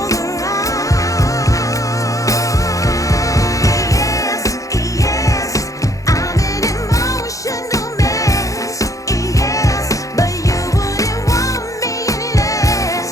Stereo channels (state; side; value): late; right; 0.16 ms